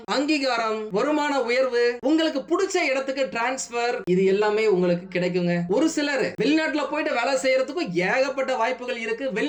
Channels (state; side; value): identical; both; correlation 1.00